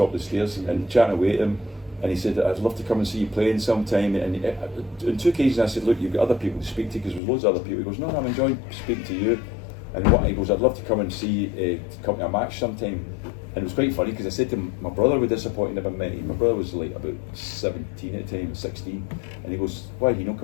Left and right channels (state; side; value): drops out; right; at 7.2 s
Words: of the stairs and chatting away to him. And he said, "I'd love to come and see you playing sometime." And on 2 occasions I said, "Look, you've got other people to speak to," because there's loads of other people. He goes, "No, I'm enjoying speaking to you." And he goes, "I'd love to come and see you to come to a match sometime." And it was quite funny because I said to him, my brother was disappointed about me. My brother was like about 17 at the time, 16. And he goes, "Why did he not